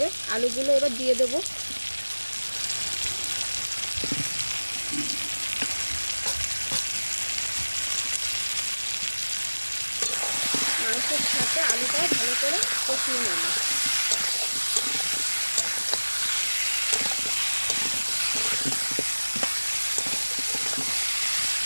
আলুগুলো এবার দিয়ে দেবো। মাংসের সাথে আলুটাও ভালো করে কষিয়ে নেব।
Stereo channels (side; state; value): both; inverted; correlation -1.00